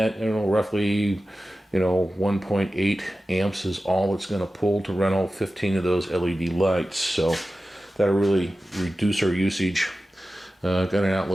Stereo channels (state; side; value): normal; both; correlation 0.94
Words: roughly, 1.8 amps is all it's going to pull to run all 15 of those LED lights. So that'll really reduce our usage. Got an